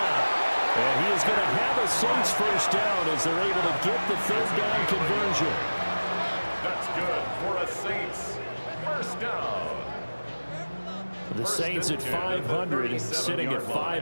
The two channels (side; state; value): both; inverted; correlation -1.00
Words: And he is going to have a Saints first down as they're able to get the 3rd down conversion. That's good for a Saints first down. The Saints at 500 and sitting at